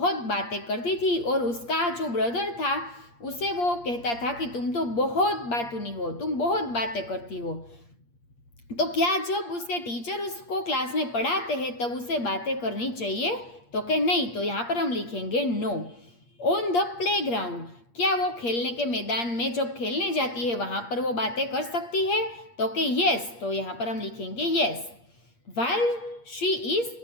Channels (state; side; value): late; right; 8.5 ms